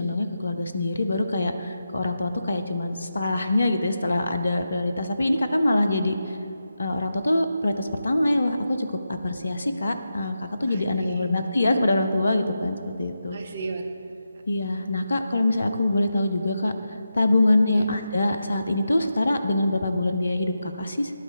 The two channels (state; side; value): inverted; both; correlation -0.88